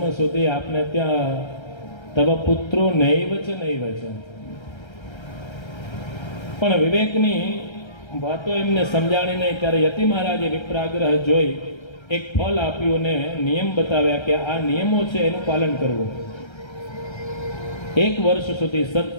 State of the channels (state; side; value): late; right; 1.3 ms